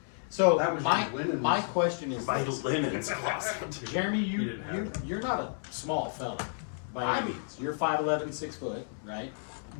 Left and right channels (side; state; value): right; silent; 57 dB below the other